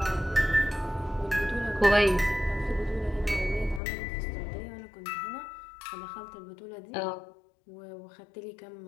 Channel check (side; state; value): right; drops out; at 3.8 s